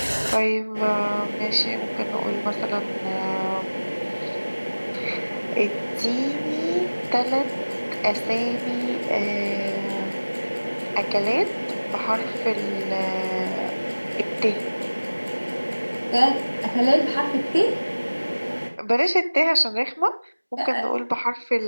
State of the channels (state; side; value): inverted; both; correlation -1.00